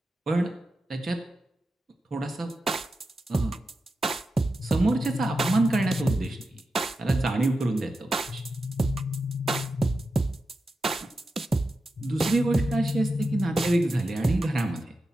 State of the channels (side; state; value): both; normal; correlation 0.90